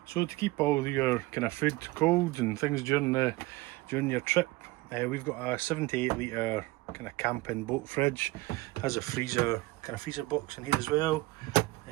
So to keep all your kind of food cold and things during your trip, we've got a 7 to 8 litre kind of camping boat fridge. Has a freezer box in here as well.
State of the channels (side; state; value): left; quieter; 20.8 dB